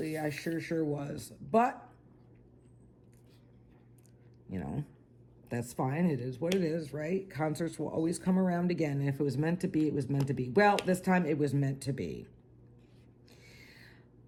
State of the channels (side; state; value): both; identical; correlation 1.00